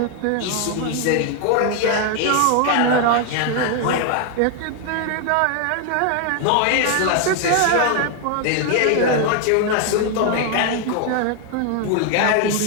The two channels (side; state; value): both; different; correlation 0.00